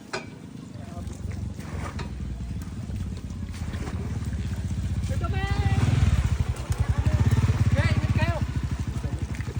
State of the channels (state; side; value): identical; both; correlation 1.00